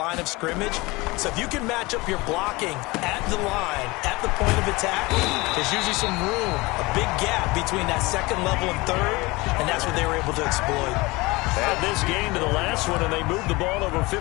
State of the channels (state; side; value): quieter; right; 23.0 dB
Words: of scrimmage. So if you can match up your blocking at the line, at the point of attack, there's usually some room, a big gap between that 2nd level and 3rd, and that's what they were able to exploit. Add this game to the last one, and they moved the ball over